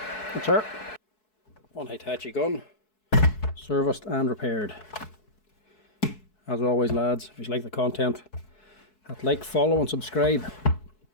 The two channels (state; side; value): late; right; 4.7 ms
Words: That's her. One Hitachi gun, serviced and repaired. As always, lads, if you like the content, hit like, follow and subscribe.